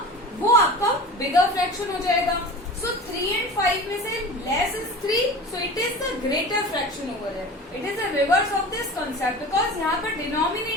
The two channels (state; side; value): normal; both; correlation 0.35